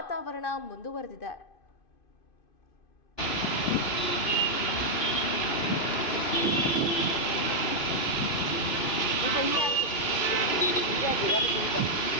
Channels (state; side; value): late; right; 3.0 ms